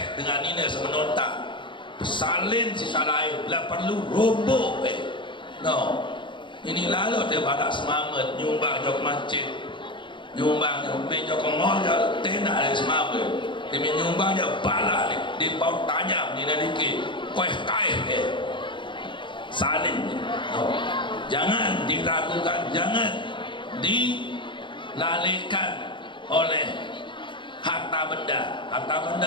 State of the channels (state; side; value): late; right; 0.23 ms